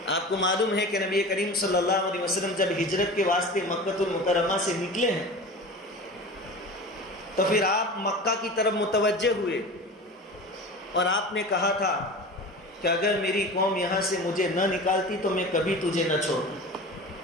آپ کو معلوم ہے کہ نبی کریم صلی اللہ علیہ وسلم جب ہجرت کے واسطے مکہ المکرمہ سے نکلے ہیں تو پھر آپ مکہ کی طرف متوجہ ہوئے اور آپ نے کہا تھا کہ اگر میری قوم یہاں سے مجھے نہ نکالتی تو میں کبھی تجھے نہ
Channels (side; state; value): both; normal; correlation 0.34